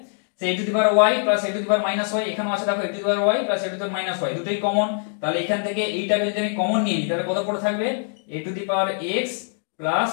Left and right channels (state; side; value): silent; right; 63 dB below the other